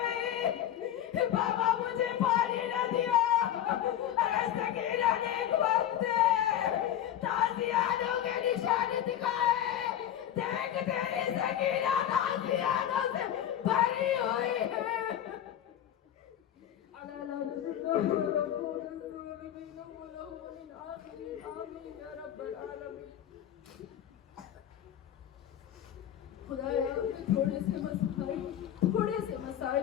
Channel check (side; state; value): right; quieter; 11.0 dB